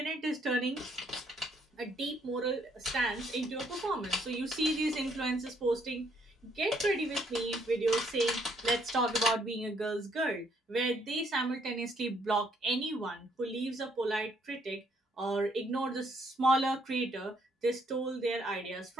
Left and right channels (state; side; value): normal; both; correlation 0.69